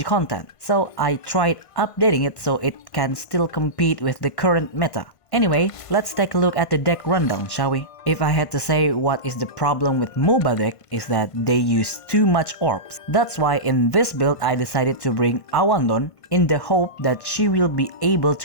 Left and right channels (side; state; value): right; late; 1.5 ms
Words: content, so I tried updating it so it can still compete with the current meta. Anyway, let's take a look at the deck rundown, shall we? If I had to say what is the problem with Mouba deck is that they use too much orbs. That's why in this build I decided to bring Awandon in the hope that she will be able